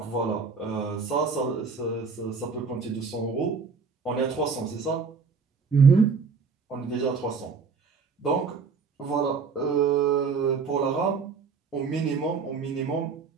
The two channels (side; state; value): left; quieter; 5.2 dB